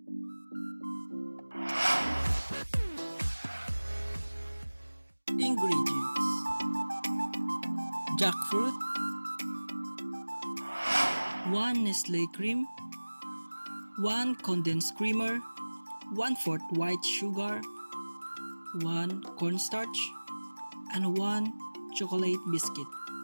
Ingredients: jackfruit, 1 Nestle cream, 1 condensed creamer, 1/4 white sugar, 1 cornstarch, and 1 chocolate biscuit.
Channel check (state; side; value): inverted; both; correlation -1.00